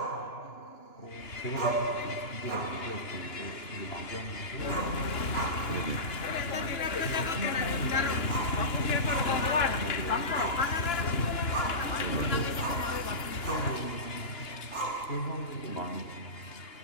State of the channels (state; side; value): late; right; 2.9 ms